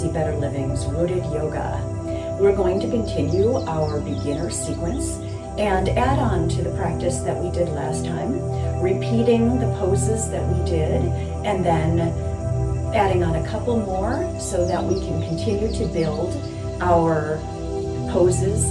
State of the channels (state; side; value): identical; both; correlation 1.00